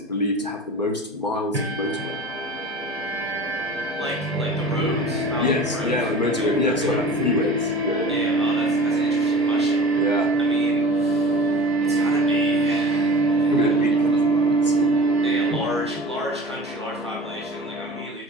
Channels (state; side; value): normal; both; correlation 0.38